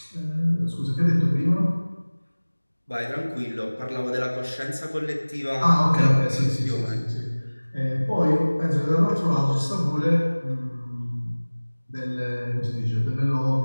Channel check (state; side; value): inverted; both; correlation -1.00